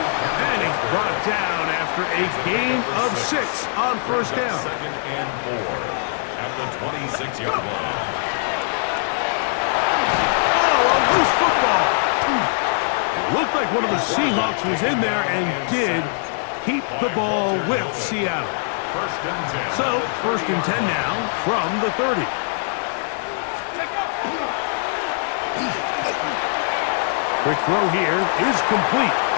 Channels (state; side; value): silent; right; digital silence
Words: And he's brought down after a gain of 6 on first down. Second and 4 at the 26-yard line. Loose football. It looked like one of the Seahawks was in there and did keep the ball with Seattle. First and 10. So, first and 10 now from the 30. Quick throw here is complete.